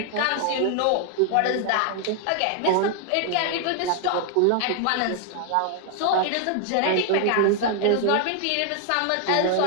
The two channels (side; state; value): both; different; correlation 0.00